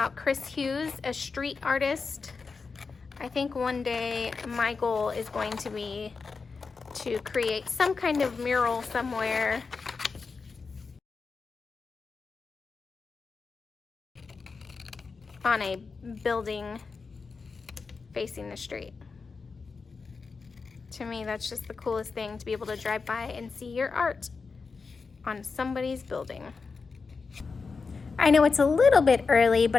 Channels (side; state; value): right; quieter; 4.7 dB